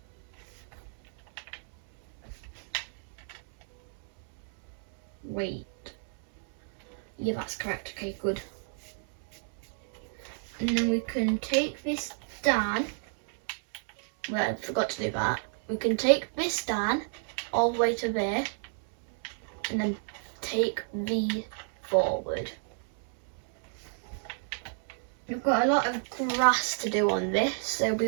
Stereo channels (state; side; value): silent; left; 57 dB below the other